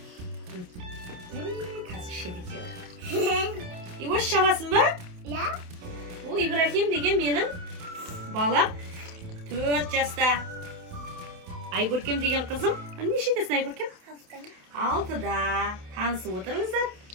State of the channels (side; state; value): left; late; 28 ms